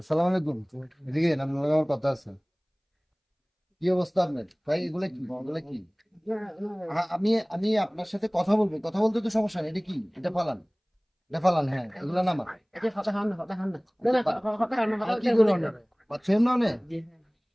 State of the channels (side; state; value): both; identical; correlation 1.00